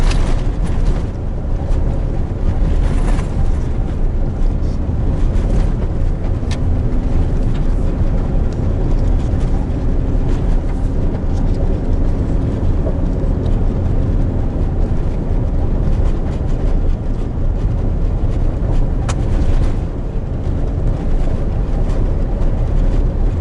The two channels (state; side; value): identical; both; correlation 1.00